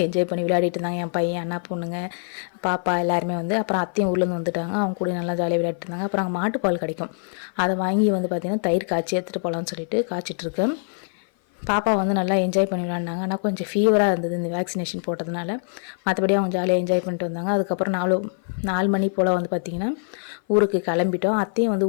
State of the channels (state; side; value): silent; right; 56 dB below the other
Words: என்ஜாய் பண்ணி விளையாடிட்டு இருந்தாங்க. என் பையன், அண்ணா பொண்ணுங்க, பாப்பா எல்லாருமே வந்து. அப்புறம் அத்தையும் ஊர்லேருந்து வந்துட்டாங்க. அவங்க கூட நல்லா ஜாலியாக விளையாட்டு இருந்தாங்க. அப்புறம் அங்கே மாட்டுப்பால் கிடைக்கும், அதை வாங்கி வந்து பார்த்திங்கன்னா தயிர் காய்ச்சி எடுத்துகிட்டு போகலான்னு சொல்லிட்டு காய்ச்சிட்ருக்கேன். பாப்பா வந்து நல்லா என்ஜாய் பண்ணி விளாண்டாங்க. ஆனால் கொஞ்சம் ஃபீவராக இருந்தது இந்த வேக்சினேஷன் போட்டதுனால. மற்றபடி அவங்க ஜாலியாக என்ஜாய் பண்ணிட்டு வந்தாங்க. அதுக்கப்புறம் 4 மணி போல் வந்து பார்த்திங்கன்னா ஊருக்கு கிளம்பிட்டோம். அத்தையும் வந்து